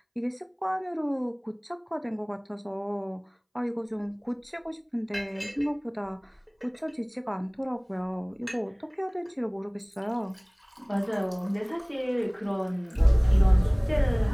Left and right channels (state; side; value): identical; both; correlation 1.00